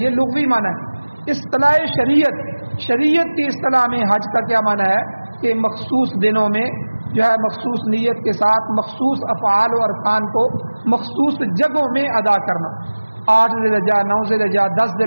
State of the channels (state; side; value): inverted; both; correlation -1.00